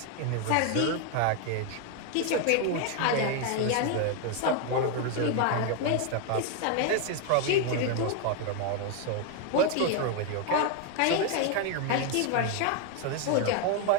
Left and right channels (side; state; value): both; different; correlation 0.01